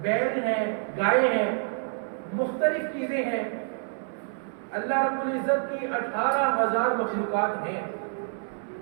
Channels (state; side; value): silent; left; 60 dB below the other